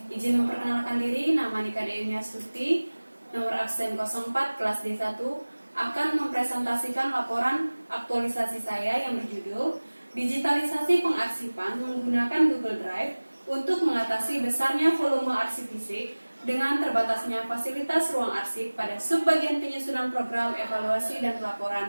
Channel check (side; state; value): both; inverted; correlation -1.00